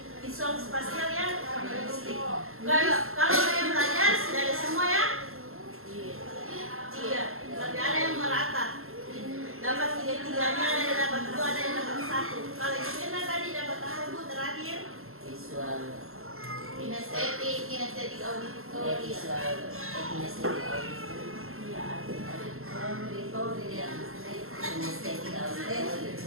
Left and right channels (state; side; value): late; left; 0.62 ms